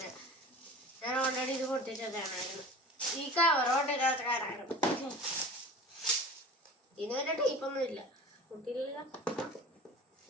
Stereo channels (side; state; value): both; normal; correlation 0.39